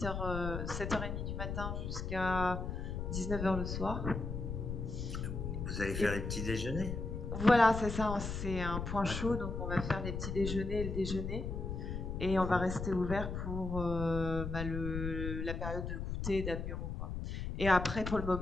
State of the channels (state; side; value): noise; left; rumble, 4 dB below the sound